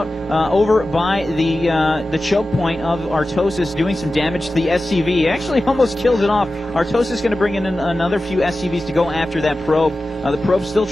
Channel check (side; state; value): both; normal; correlation 0.94